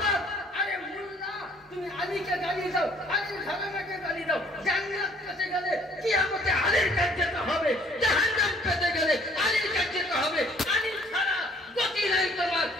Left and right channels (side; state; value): both; normal; correlation 0.59